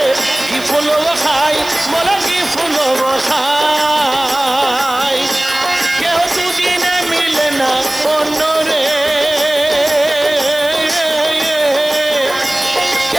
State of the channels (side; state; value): right; noise; hiss, 15 dB below the sound